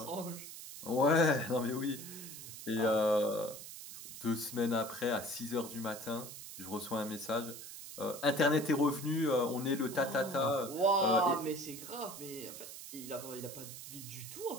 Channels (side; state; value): right; noise; hiss, 12 dB below the sound